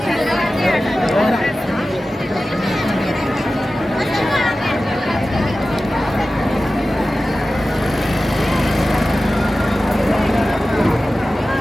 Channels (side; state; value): both; normal; correlation 0.95